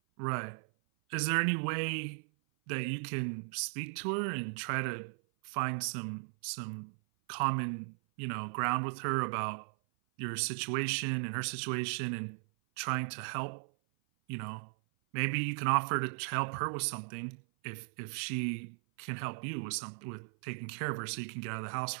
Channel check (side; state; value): left; silent; 53 dB below the other